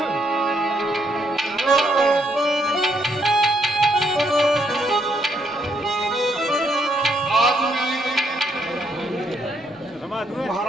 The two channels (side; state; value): both; normal; correlation 0.74